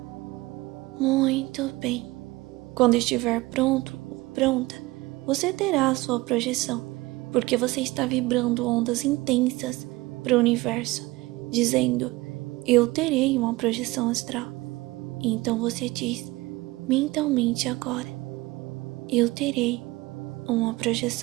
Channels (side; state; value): left; quieter; 20.7 dB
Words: Muito bem. Quando estiver pronto ou pronta, você terá a sua projeção, porque você está vibrando ondas intensas para o universo, dizendo: eu terei uma projeção astral. Então você diz mentalmente agora: eu terei uma